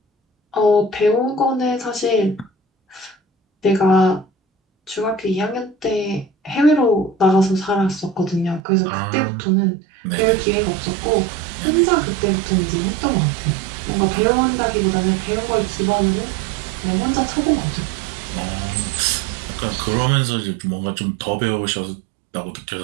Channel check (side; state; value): left; drops out; at 8.6 s